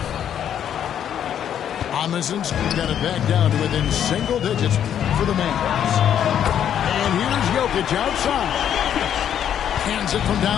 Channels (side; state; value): right; quieter; 9.6 dB